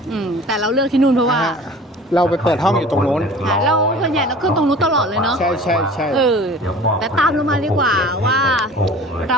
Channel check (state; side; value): normal; both; correlation 0.43